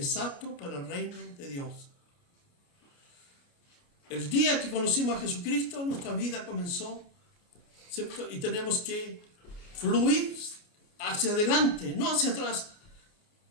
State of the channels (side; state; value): right; late; 29 ms